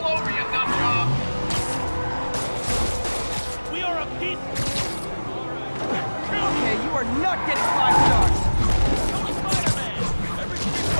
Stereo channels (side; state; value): both; inverted; correlation -1.00